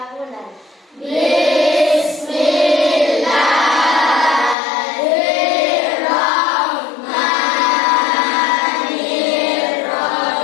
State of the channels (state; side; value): drops out; right; at 4.5 s